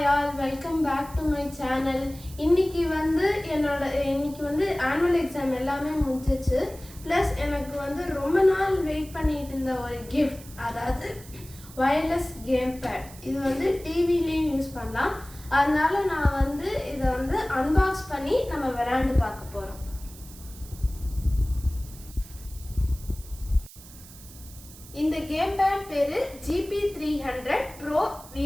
all, welcome back to my channel. இன்னைக்கு வந்து annual exam எல்லாமே முடிஞ்சிச்சு. Plus எனக்கு வந்து ரொம்ப நாள் வெயிட் பண்ணிட்டு இருந்த ஒரு gift, அதாவது wireless gamepad. இது வந்து டிவிலயும் யூஸ் பண்ணலாம். அதனால நான் வந்து இதை வந்து அன்பாக்ஸ் பண்ணி நம்ம விளையாண்டு பார்க்க போறோம். இந்த கேம்பேட் பேரு GP300 Pro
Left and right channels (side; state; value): right; noise; hiss, 19 dB below the sound